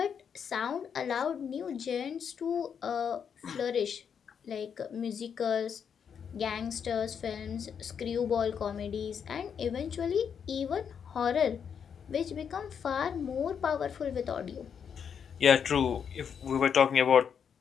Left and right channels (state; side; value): quieter; right; 7.3 dB